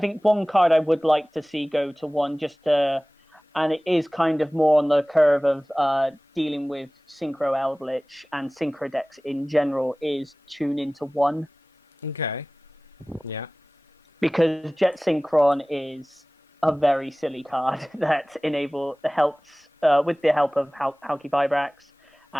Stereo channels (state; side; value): normal; both; correlation 0.98